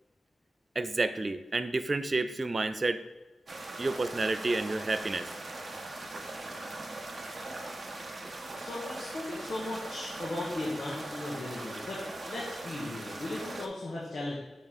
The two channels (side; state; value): both; normal; correlation 0.93